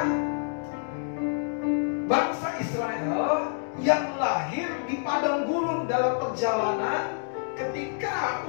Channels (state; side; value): silent; right; digital silence